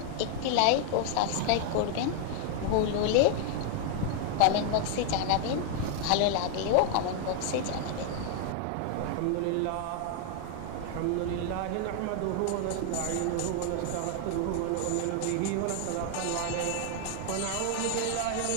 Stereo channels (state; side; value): different; both; correlation 0.00